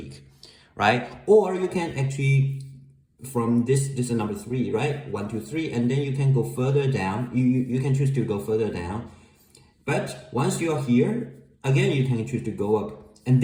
right? Or you can actually, from this is number 3, right? 1, 2, 3, and then you can go further down. You can choose to go further down. But once you're here, again, you can choose to go up. And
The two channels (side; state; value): both; identical; correlation 1.00